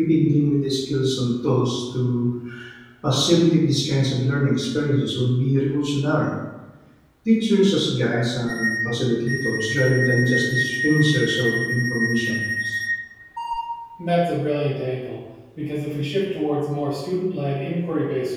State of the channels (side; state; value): both; identical; correlation 1.00